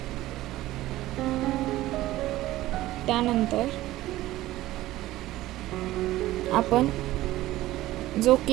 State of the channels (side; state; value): left; quieter; 16.1 dB